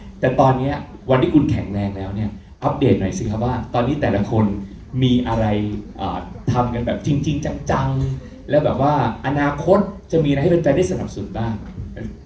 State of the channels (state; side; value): identical; both; correlation 1.00